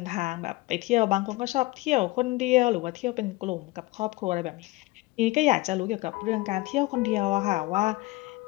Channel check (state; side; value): quieter; right; 20.5 dB